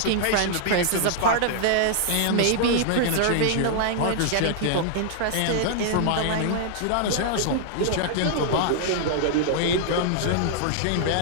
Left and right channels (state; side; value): different; both; correlation -0.01